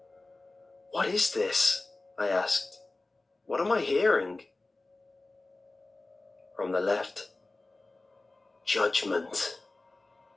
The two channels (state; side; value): quieter; right; 3.1 dB